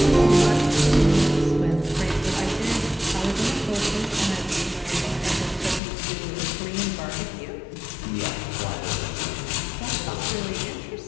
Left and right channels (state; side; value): drops out; right; at 5.8 s